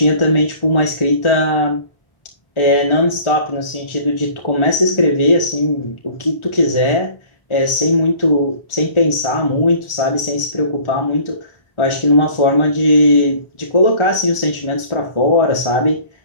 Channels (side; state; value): right; late; 1.4 ms